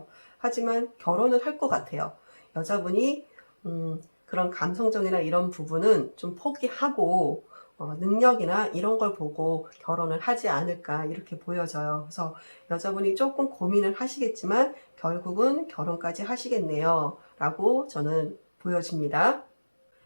하지만 결혼을 할 것 같아요. 여자분이 그런 감성적이나 이런 부분은 좀 포기하고 능력이나 이런 걸 보고 결혼을 하지 않을까 이렇게 보여져요. 그래서 여자분이 조금 고민을 하시겠지만 결국은 결혼까지 하시겠네요 라고 저는 보여집니다.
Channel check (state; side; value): inverted; both; correlation -1.00